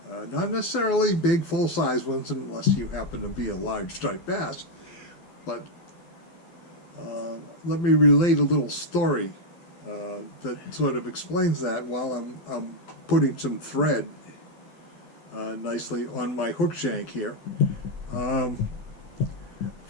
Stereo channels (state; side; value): late; right; 12 ms